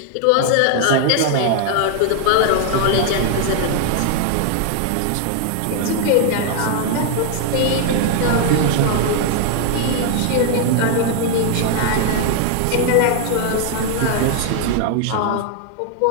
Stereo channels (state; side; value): different; both; correlation 0.00